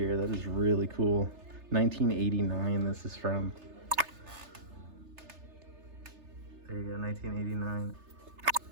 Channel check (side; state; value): left; late; 3.3 ms